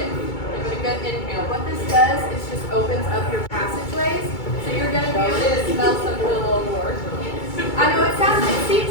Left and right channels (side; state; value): right; late; 2.3 ms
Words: Give it a good inhale. What this does is just opens up your passageways, so you're going to be able to smell something a little more. I know it